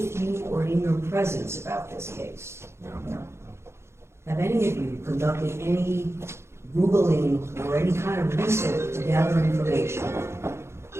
you or in your presence about this case? No. Have any of you conducted any Googling or any kind of research to gather information?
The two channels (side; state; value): left; late; 0.13 ms